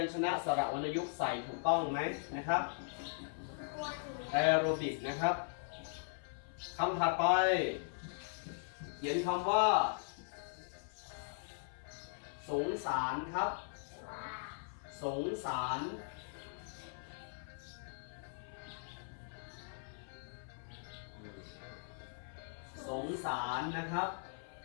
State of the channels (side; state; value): right; silent; 51 dB below the other